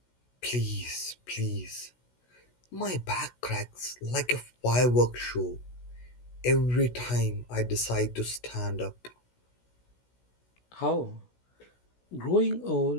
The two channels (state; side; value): late; right; 16 ms